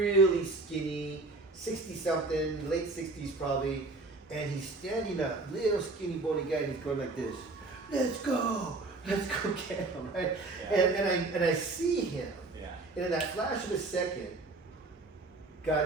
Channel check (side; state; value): left; quieter; 3.3 dB